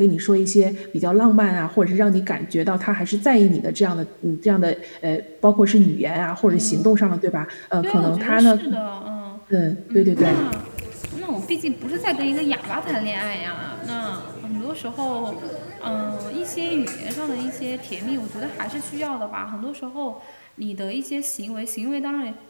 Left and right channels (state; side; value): inverted; both; correlation -1.00